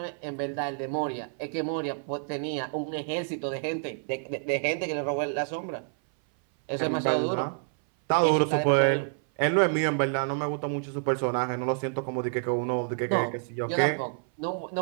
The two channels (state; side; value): silent; left; 59 dB below the other